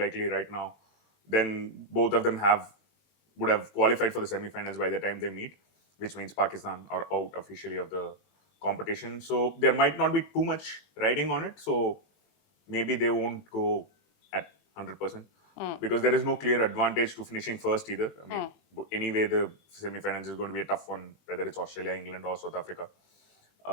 right now, then both of them would have qualified for the semi-finals by the time they meet, which means Pakistan are out officially of the competition. So there might not be too much riding on it. So maybe they won't go at 100%. Because there is no clear advantage to finishing first either. Anyway, the semi-finals is going to be a tough one, whether it's Australia, England, or South Africa.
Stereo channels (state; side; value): late; right; 20 ms